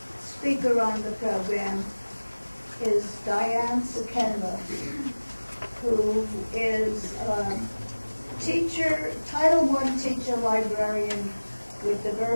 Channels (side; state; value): both; inverted; correlation -1.00